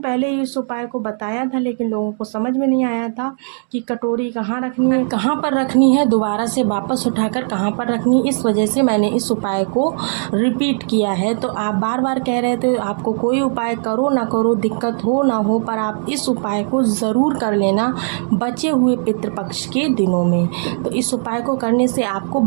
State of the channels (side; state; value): left; silent; 61 dB below the other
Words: पहले ही इस उपाय को बताया था, लेकिन लोगों को समझ में नहीं आया था कि कटोरी कहाँ रखनी है, कहाँ पर रखनी है, दोबारा से वापस उठाकर कहाँ पर रखनी है। इस वजह से मैंने इस उपाय को रिपीट किया है। तो आप बार बार कह रहे थे आपको कोई उपाय करो ना करो, दिक्कत हो ना हो, पर आप इस उपाय को ज़रूर कर लेना बचे हुए पितृपक्ष के दिनों में। तो इस उपाय को करने से आपको